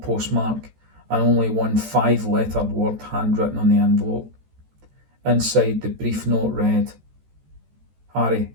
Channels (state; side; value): late; left; 14 ms